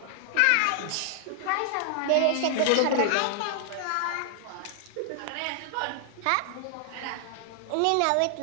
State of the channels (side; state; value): both; different; correlation 0.00